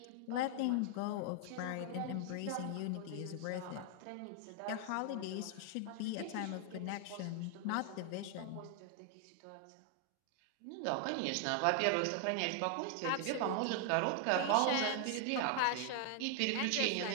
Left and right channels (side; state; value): both; different; correlation 0.00